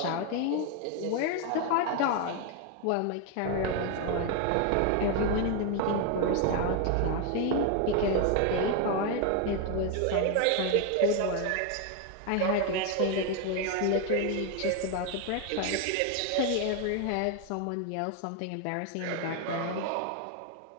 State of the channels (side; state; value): both; different; correlation 0.01